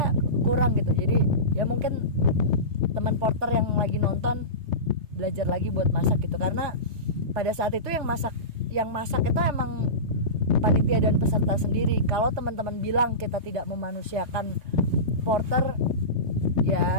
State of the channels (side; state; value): left; late; 3.3 ms